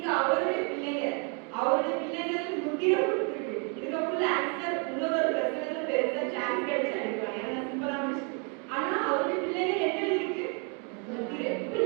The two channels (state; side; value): quieter; left; 36.7 dB